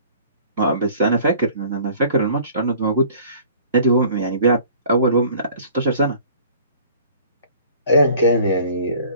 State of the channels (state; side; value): inverted; both; correlation -0.50